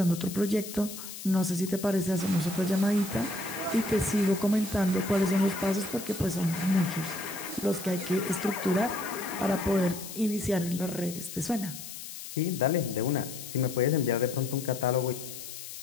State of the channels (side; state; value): left; noise; hiss, 11 dB below the sound